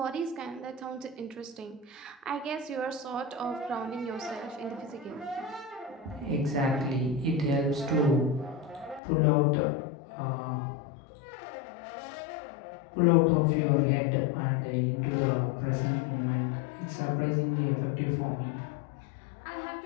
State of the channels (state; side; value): drops out; right; at 9.0 s